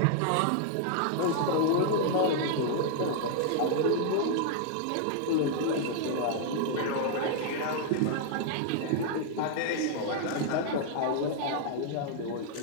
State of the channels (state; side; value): different; both; correlation -0.01